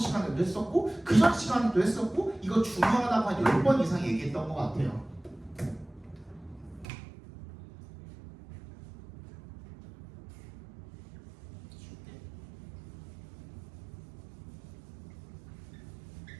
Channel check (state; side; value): drops out; left; at 6.9 s